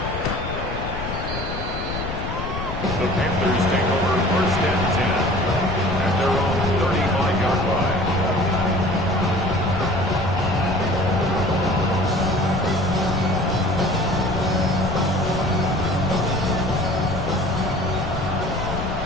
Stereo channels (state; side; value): noise; left; rumble, 6 dB below the sound